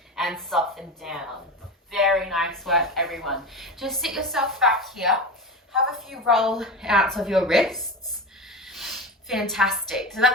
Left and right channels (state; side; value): normal; both; correlation 0.25